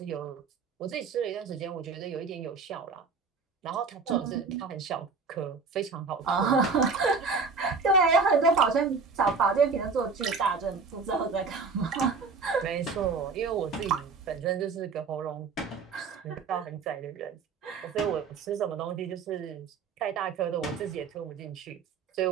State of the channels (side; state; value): left; quieter; 4.8 dB